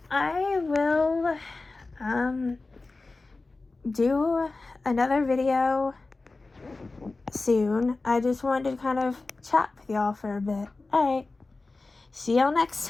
I will do another video soon. I just wanted to kind of chat with y'all for a bit. Alright. See y'all next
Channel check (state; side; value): quieter; right; 3.5 dB